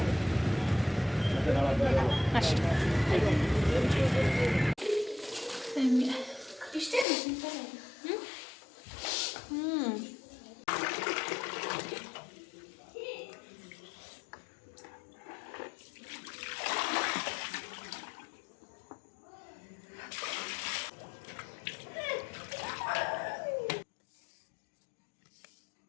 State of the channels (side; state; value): right; drops out; at 7.1 s